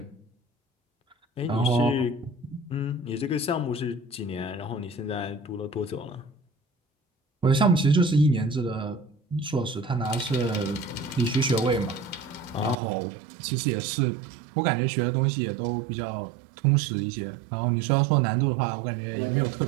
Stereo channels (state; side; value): drops out; left; at 12.8 s